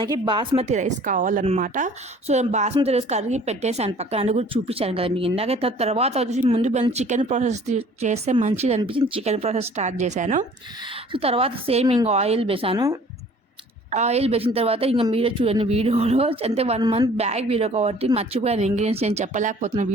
బాస్మతి రైస్ కావాలన్నమాట. సో బాస్మతి రైస్ కడిగి పెట్టేసాను పక్కన, అది కూడా చూపించాను కదా మీకు ఇందాక. తర్వాత వచ్చేసి ముందు చికెన్ ప్రాసెస్ చేస్తే మంచిది అనిపించింది, చికెన్ ప్రాసెస్ స్టార్ట్ చేశాను. సో తర్వాత సేమ్ ఇంకా ఆయిల్ వేసిన తర్వాత ఇంకా మీరే చూడండి వీడియోలో. అంటే 1 మంత్ బ్యాక్ వీడియో కాబట్టి మర్చిపోయాను ఇంగ్రీడియంట్స్, నేను చెప్పలేకపోతున్నాను.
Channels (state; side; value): normal; both; correlation 0.52